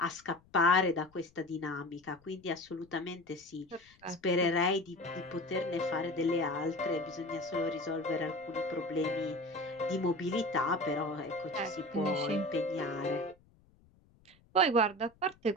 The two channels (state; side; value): noise; left; rumble, 30 dB below the sound